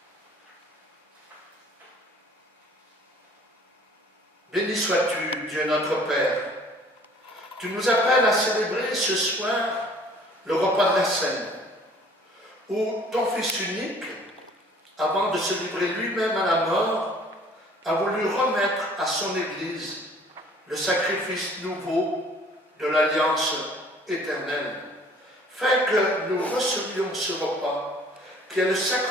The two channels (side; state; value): both; normal; correlation 0.53